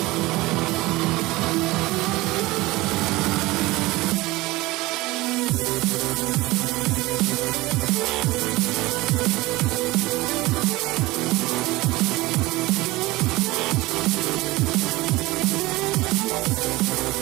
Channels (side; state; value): left; quieter; 20.2 dB